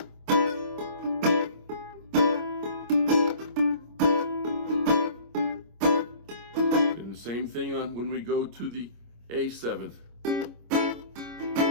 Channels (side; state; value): left; late; 25 ms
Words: and the same thing on when we go to the A7th.